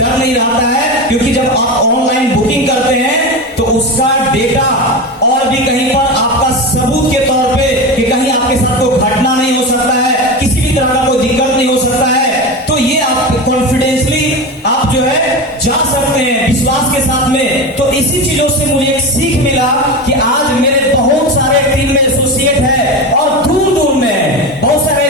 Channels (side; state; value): both; normal; correlation 0.22